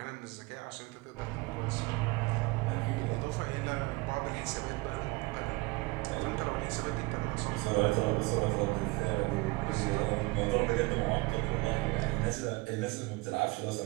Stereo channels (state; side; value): quieter; left; 24.1 dB